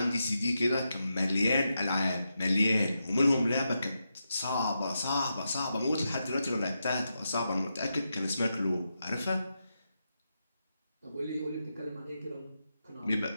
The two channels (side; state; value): both; inverted; correlation -0.86